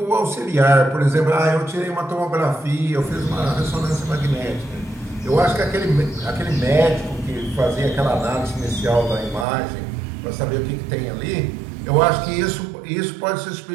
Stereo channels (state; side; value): drops out; left; at 9.5 s